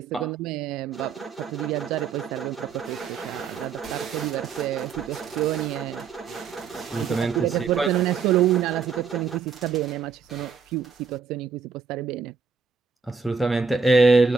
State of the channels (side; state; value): left; quieter; 5.5 dB